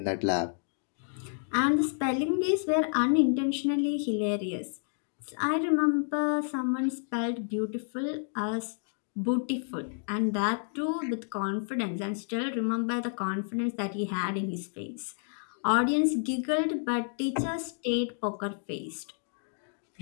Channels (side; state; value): right; silent; digital silence